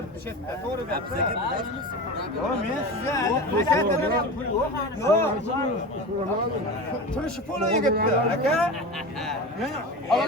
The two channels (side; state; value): both; normal; correlation 0.28